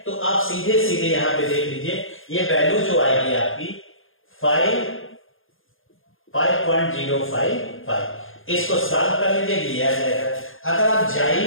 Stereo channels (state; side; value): late; right; 0.59 ms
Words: तो आप सीधे सीधे यहां पे देख लीजिए, ये वैल्यू जो आएगी आपकी 5.055, इसको सॉल्व कर लीजिए, ये आ जाएगा। अगर आप